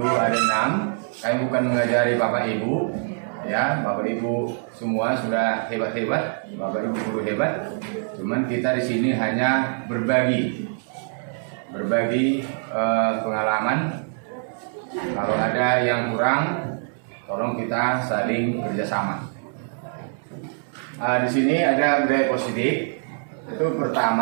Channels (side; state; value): left; silent; 63 dB below the other